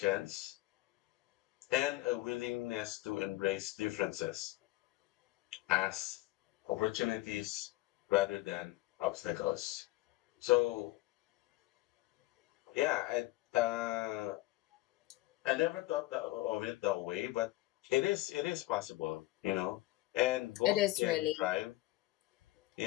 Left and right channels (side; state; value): right; quieter; 18.4 dB